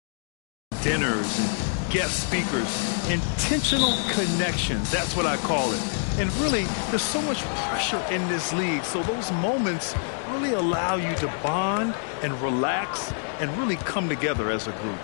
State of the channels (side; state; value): right; silent; digital silence